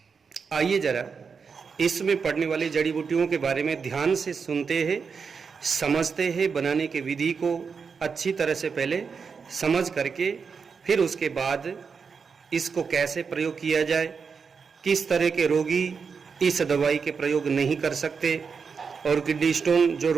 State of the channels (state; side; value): quieter; left; 5.6 dB